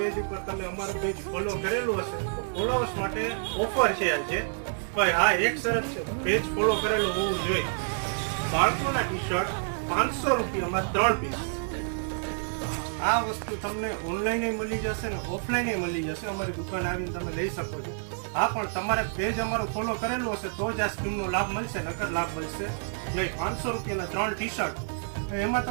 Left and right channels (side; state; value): left; silent; 59 dB below the other